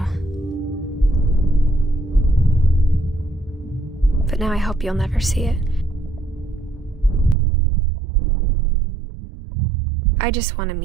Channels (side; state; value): left; drops out; at 7.4 s